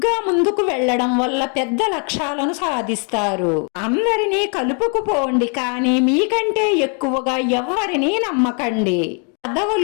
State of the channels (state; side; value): quieter; right; 39.1 dB